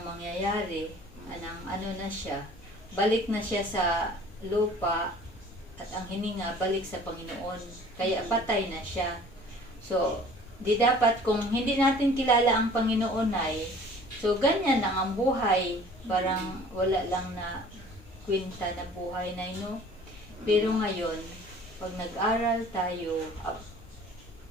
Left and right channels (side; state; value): both; normal; correlation 0.49